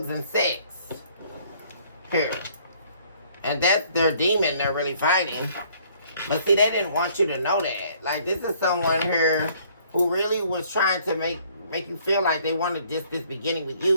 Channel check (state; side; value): inverted; both; correlation -0.61